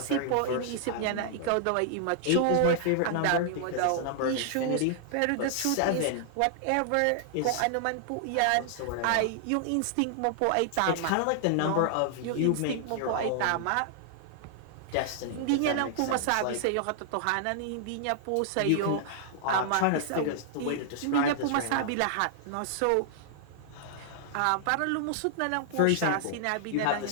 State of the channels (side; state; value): both; different; correlation -0.01